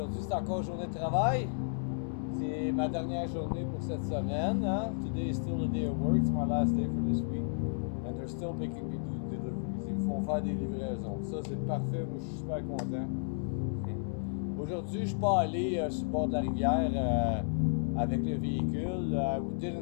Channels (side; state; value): right; silent; digital silence